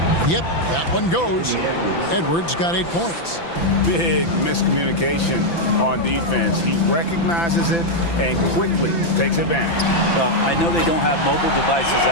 Yep, that one goes. Edwards got 8 points. Big miscommunication on defense. He recognizes it and quickly takes advantage. Well, I know they don't have mobile devices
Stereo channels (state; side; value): late; right; 5.9 ms